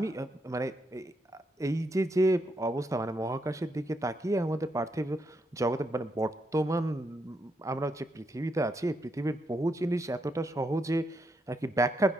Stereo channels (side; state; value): both; normal; correlation 0.79